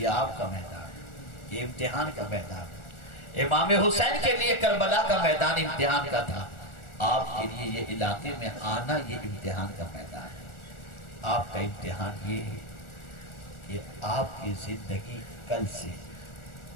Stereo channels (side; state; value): right; late; 1.4 ms